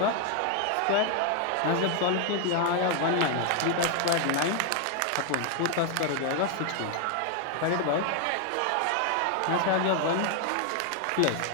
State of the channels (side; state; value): both; different; correlation 0.00